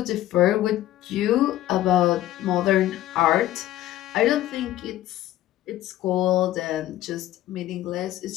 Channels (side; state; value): right; quieter; 14.2 dB